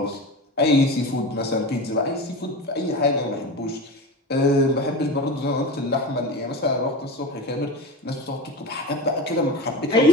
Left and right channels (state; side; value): normal; both; correlation 0.28